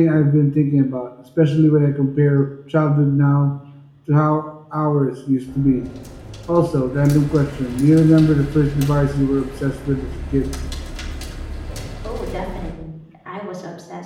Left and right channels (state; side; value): identical; both; correlation 1.00